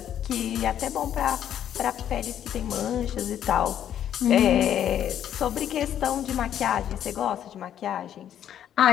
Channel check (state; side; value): quieter; right; 10.3 dB